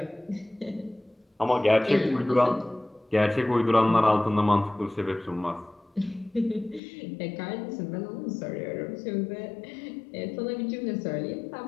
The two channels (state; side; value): drops out; right; at 6.8 s